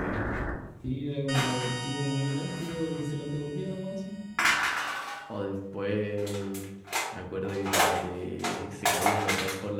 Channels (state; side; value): identical; both; correlation 1.00